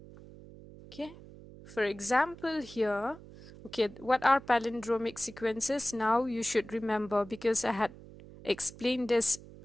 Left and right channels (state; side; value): noise; right; hum, 18 dB below the sound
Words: Okay, for example here, okay, what are palindromic sequences? Now you should remember, because I had explained this